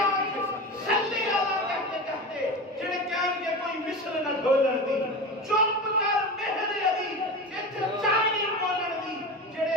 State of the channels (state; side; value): normal; both; correlation 0.27